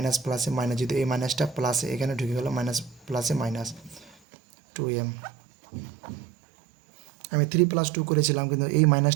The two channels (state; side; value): drops out; left; at 4.2 s